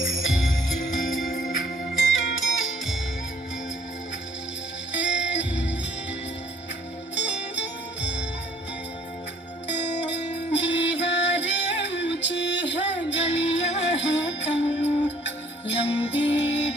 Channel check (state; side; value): normal; both; correlation 0.58